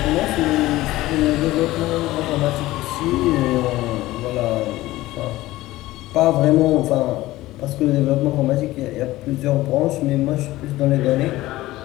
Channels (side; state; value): right; quieter; 17.3 dB